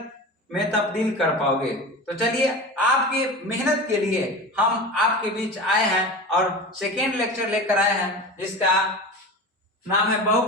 में तब्दील कर पाओगे। तो चलिए आपके मेहनत के लिए हम आपके बीच आए हैं और सेकेंड लेक्चर लेकर आए हैं जिसका नाम है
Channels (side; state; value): both; normal; correlation 0.30